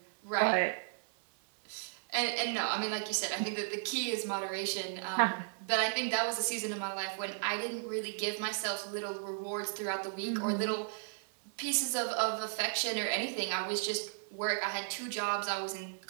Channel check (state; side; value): silent; left; 55 dB below the other